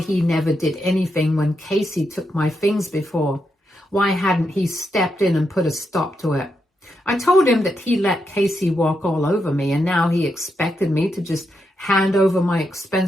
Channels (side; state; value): both; normal; correlation 0.83